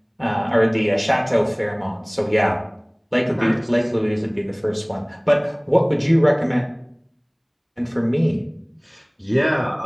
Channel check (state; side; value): identical; both; correlation 1.00